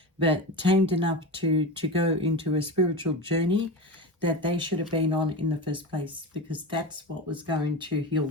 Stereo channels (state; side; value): normal; both; correlation 0.24